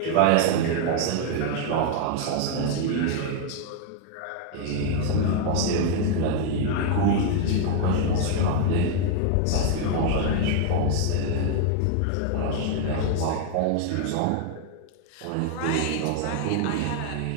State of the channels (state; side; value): different; both; correlation 0.00